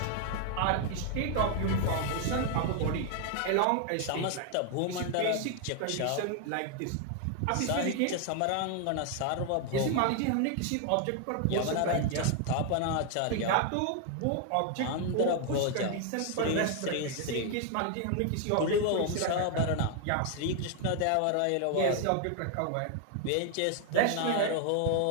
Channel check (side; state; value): both; different; correlation 0.00